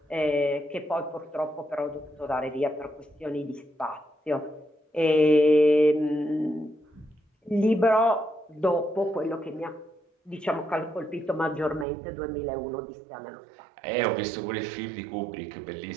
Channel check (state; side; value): drops out; left; at 11.9 s